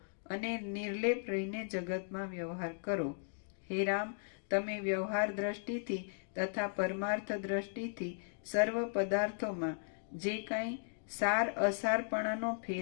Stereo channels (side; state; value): right; silent; digital silence